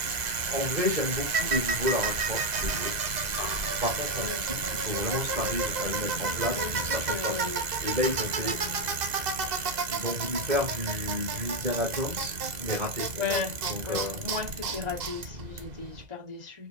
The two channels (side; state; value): left; late; 2.0 ms